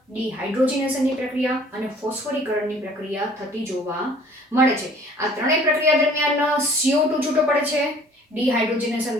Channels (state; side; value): normal; both; correlation 0.53